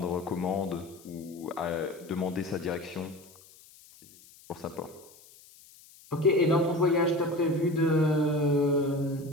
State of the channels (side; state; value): left; noise; hiss, 24 dB below the sound